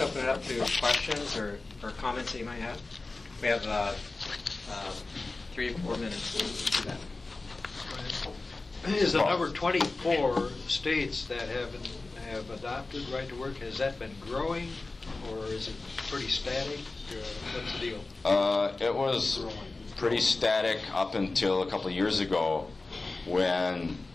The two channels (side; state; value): right; quieter; 3.4 dB